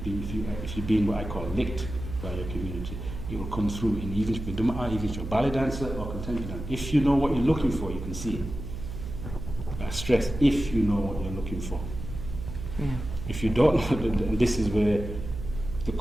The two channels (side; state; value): right; noise; hum, 8 dB below the sound